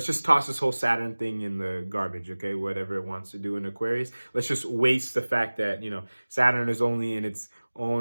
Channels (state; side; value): inverted; both; correlation -1.00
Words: just toss this whole Saturn thing in the garbage, okay? Whatever it wants to do in Aquarius. Let's just waste the fact that, Saturn is only in its